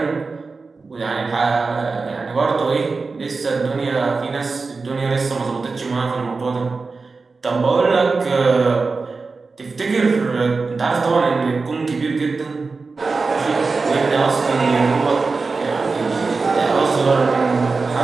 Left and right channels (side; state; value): left; quieter; 4.2 dB